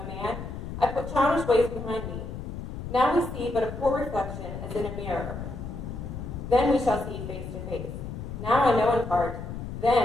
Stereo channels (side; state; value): left; noise; rumble, 8 dB below the sound